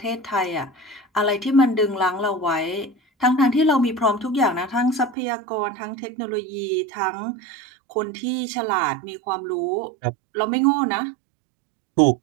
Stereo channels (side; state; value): left; drops out; at 5.2 s